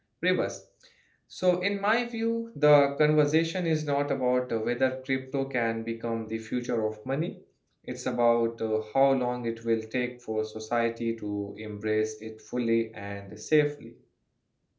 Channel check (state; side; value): identical; both; correlation 1.00